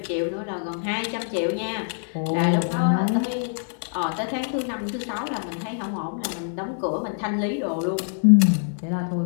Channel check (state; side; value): silent; right; digital silence